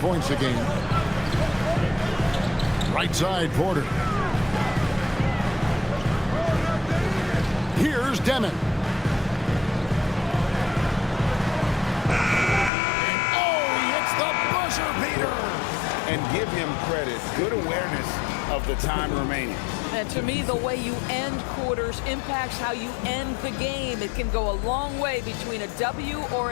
a game. Right side, Porter. Here's Demon. And oh, he hits the buzzer beater. And give him credit. Good awareness of the time remaining. And to me, the way you end quarters impacts how you end the game. It can go a long way between a W or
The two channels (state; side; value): drops out; right; at 12.7 s